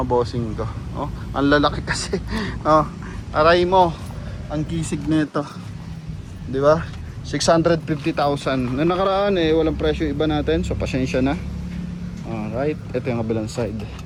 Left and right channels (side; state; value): both; identical; correlation 1.00